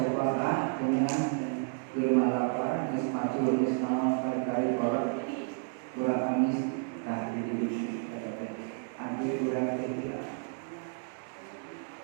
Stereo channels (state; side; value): silent; left; 57 dB below the other